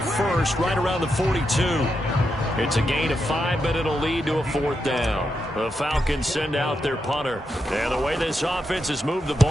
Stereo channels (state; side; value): normal; both; correlation 0.84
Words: 1st, right around the 42. It's a gain of 5, but it'll lead to a 4th down. The Falcons send out their punter. And the way this offense has moved the